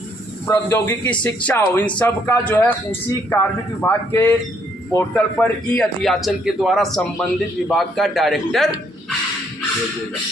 प्रौद्योगिकी शिक्षा हो, इन सब का जो है उसी कार्मिक विभाग के पोर्टल पर ई अध्याचन के द्वारा संबंधित विभाग का डायरेक्टर भेजेगा।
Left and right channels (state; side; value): normal; both; correlation 0.69